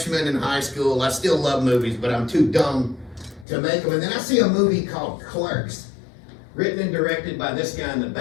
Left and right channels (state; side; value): drops out; right; at 3.5 s